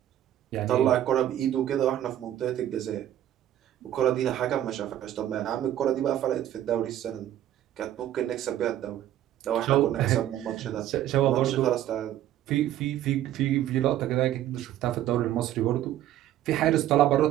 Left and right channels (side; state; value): left; quieter; 12.3 dB